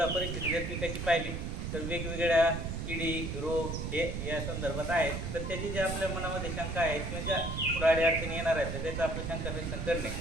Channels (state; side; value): noise; right; rumble, 4 dB below the sound